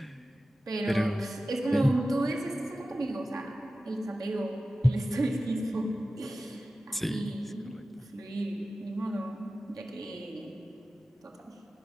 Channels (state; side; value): normal; both; correlation 0.95